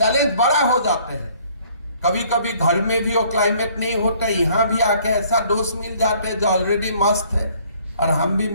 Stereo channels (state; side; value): inverted; both; correlation -0.59